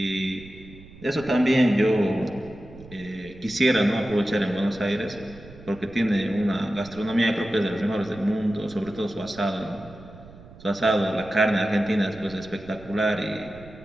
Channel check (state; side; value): noise; right; rumble, 19 dB below the sound